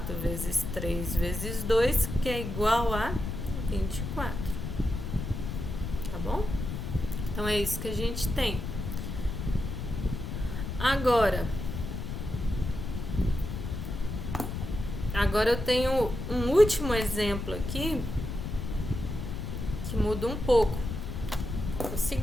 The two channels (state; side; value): noise; left; rumble, 5 dB below the sound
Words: vezes 3 vezes 2, que é igual a 24. Tá bom? Então é isso que a gente tem. Agora eu tenho um último exemplo aqui que muda um pouco. É o